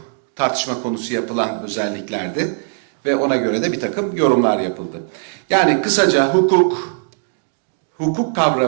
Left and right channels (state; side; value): silent; left; digital silence